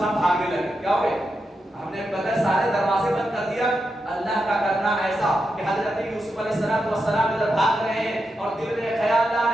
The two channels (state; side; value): normal; both; correlation 0.87